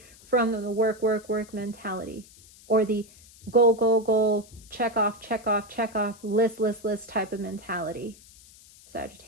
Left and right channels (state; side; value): noise; left; hiss, 23 dB below the sound